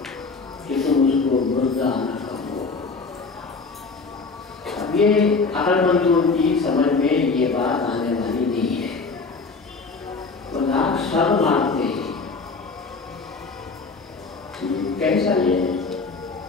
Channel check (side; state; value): right; quieter; 4.3 dB